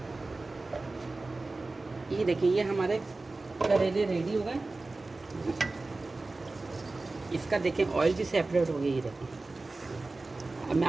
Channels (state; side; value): quieter; left; 3.3 dB